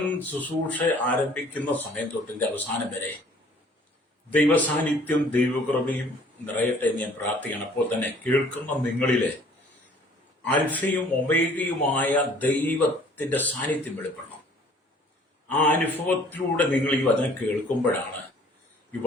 ശുശ്രൂഷ ആരംഭിക്കുന്ന സമയം തൊട്ടിന്റെ അവസാനം വരെ ദൈവസാന്നിധ്യം ദൈവകൃപയും നിറയട്ടെ എന്ന് ഞാൻ പ്രാർത്ഥിക്കണം. അപ്പോൾ തന്നെ കേൾക്കുന്ന നിങ്ങളിലെ അൽഫയും ഒമേഗയുമായ ദൈവത്തിന്റെ സാന്നിധ്യം വെളിപ്പെടണം. ആ അനുഭവത്തിലൂടെ നിങ്ങൾ ഈ വചനം കേൾക്കുമ്പോഴാണ് ഈ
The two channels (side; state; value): both; normal; correlation 0.55